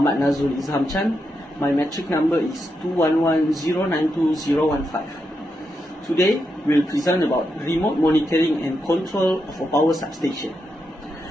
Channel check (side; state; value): both; normal; correlation 0.84